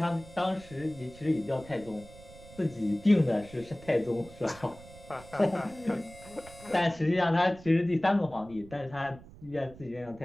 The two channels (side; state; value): right; noise; rumble, 19 dB below the sound